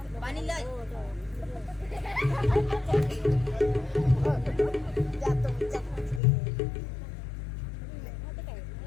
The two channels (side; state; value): right; drops out; at 6.2 s